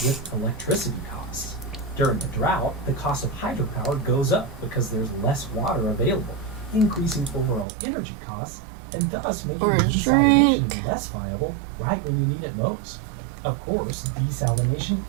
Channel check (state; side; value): drops out; left; at 7.7 s